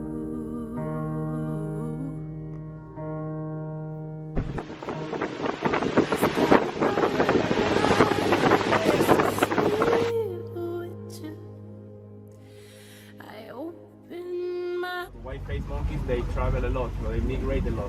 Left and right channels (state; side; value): identical; both; correlation 1.00